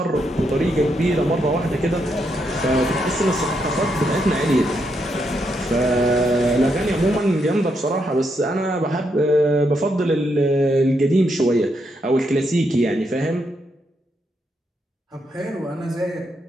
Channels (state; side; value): normal; both; correlation 0.79